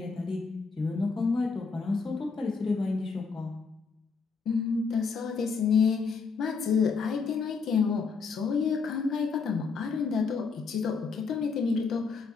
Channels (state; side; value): quieter; right; 5.0 dB